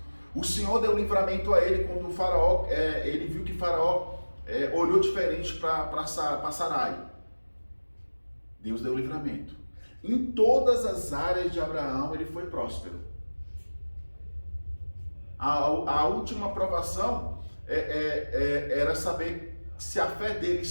O Senhor deu livramento a ele quando o faraó, ele viu que o faraó olhou diferente para Sarai. Deus deu livramento. Em todas as áreas de Abraão, ele foi próspero. A última provação era saber se a fé dele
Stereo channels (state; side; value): inverted; both; correlation -1.00